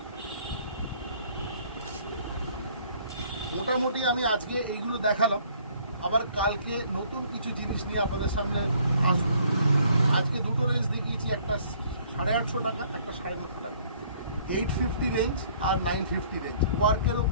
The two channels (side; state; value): both; inverted; correlation -0.60